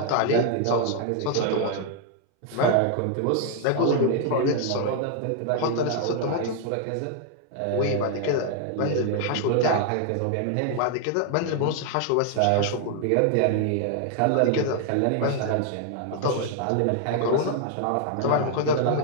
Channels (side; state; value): both; different; correlation 0.00